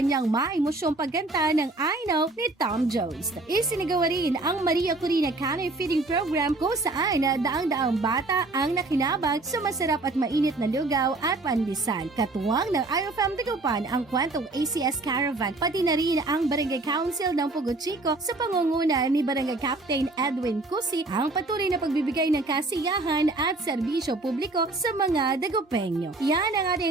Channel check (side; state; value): left; quieter; 3.1 dB